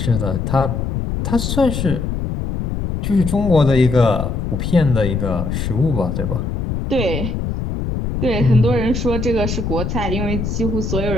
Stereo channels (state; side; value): noise; left; rumble, 2 dB below the sound